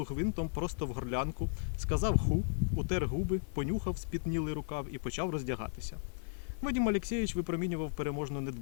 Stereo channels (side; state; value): right; silent; 54 dB below the other